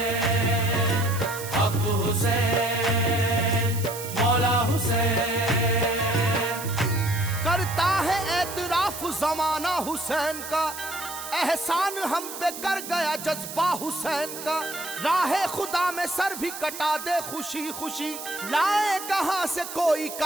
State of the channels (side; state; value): right; noise; hiss, 10 dB below the sound